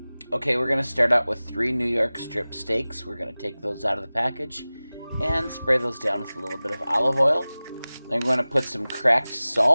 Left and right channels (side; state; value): both; inverted; correlation -0.98